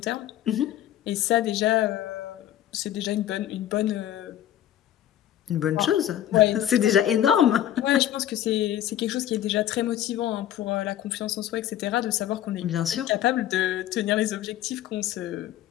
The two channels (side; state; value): right; quieter; 12.0 dB